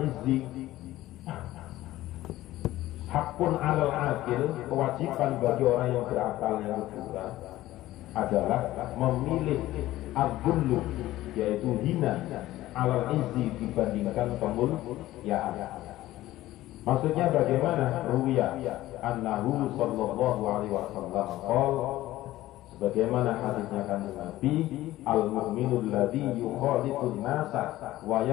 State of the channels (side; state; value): right; quieter; 15.7 dB